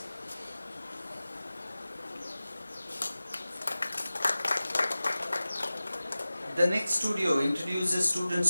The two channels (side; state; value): both; inverted; correlation -0.97